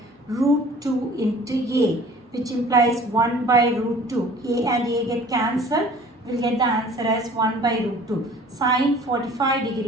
root 2 into A, which implies 1 by root 2. A and A get cancelled. We'll get the answer as 1 by root 2. Sin 45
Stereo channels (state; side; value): normal; both; correlation 0.48